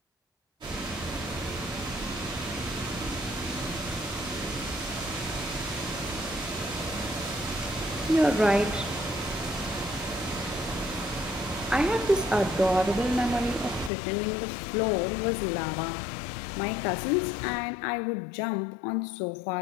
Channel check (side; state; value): right; drops out; at 13.9 s